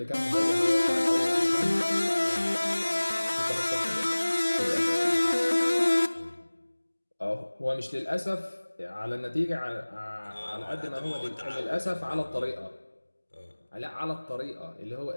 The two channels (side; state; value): both; inverted; correlation -1.00